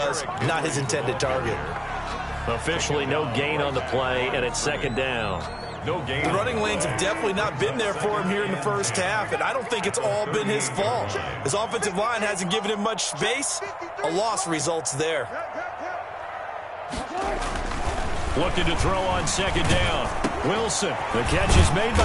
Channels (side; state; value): both; identical; correlation 1.00